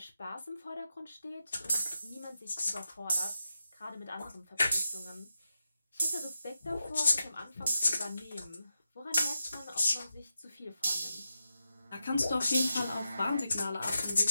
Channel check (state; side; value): inverted; both; correlation -0.89